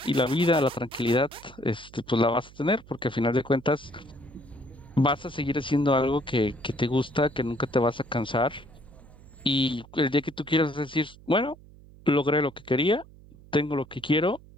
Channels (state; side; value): noise; right; hum, 22 dB below the sound